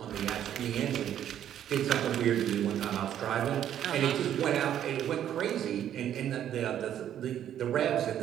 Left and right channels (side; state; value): left; quieter; 10.5 dB